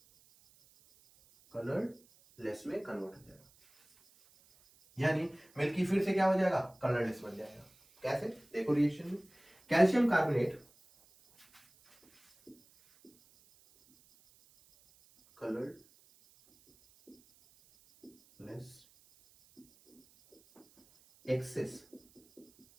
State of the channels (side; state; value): right; noise; hiss, 29 dB below the sound